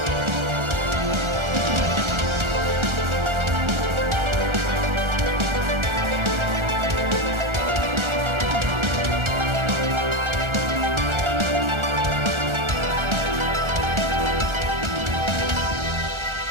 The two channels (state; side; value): late; left; 1.4 ms